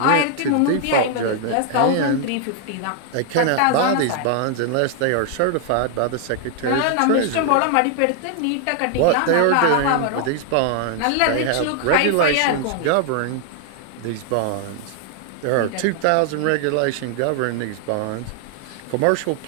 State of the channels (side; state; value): both; different; correlation 0.00